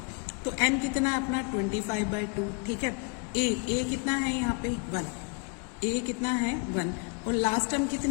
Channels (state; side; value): quieter; right; 35.2 dB